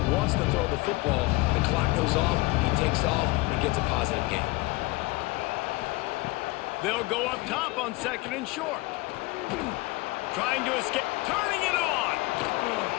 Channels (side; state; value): right; quieter; 22.4 dB